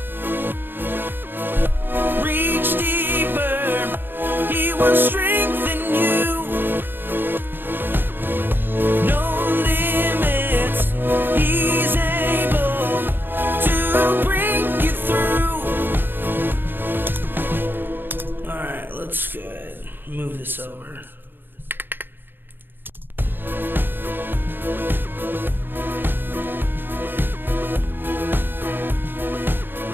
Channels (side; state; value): left; late; 0.096 ms